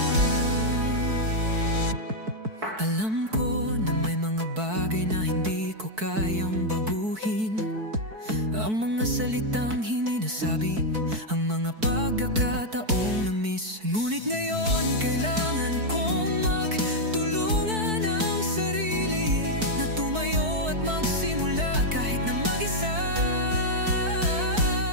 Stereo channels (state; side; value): late; left; 4.6 ms